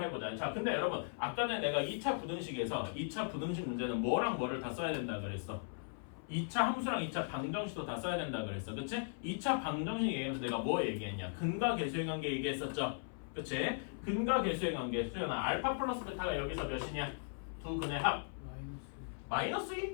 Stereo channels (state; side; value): silent; right; 52 dB below the other